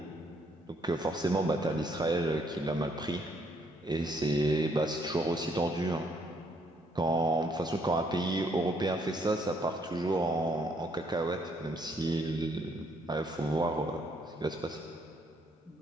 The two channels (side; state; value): both; normal; correlation 0.69